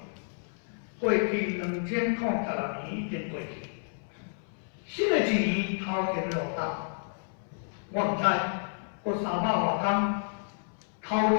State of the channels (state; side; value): silent; right; 58 dB below the other